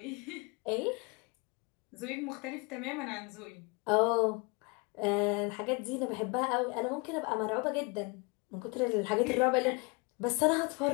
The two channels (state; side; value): quieter; right; 29.2 dB